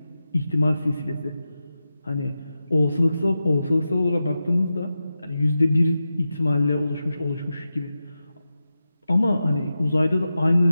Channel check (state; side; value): inverted; both; correlation -0.91